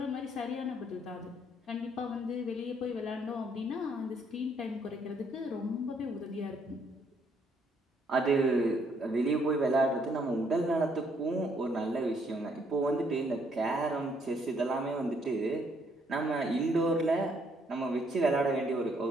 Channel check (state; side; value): normal; both; correlation 0.69